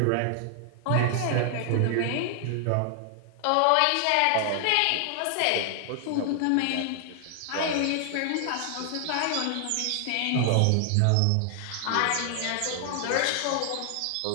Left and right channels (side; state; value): both; different; correlation 0.00